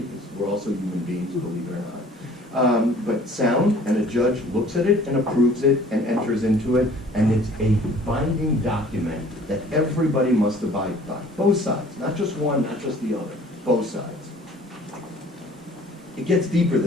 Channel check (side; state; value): both; normal; correlation 0.52